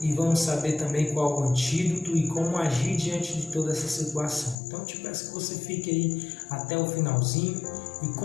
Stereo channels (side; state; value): right; drops out; at 4.5 s